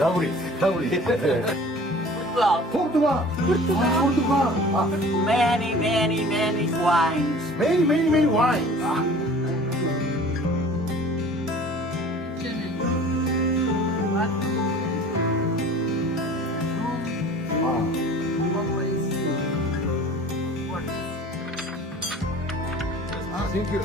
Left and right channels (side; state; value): both; normal; correlation 0.45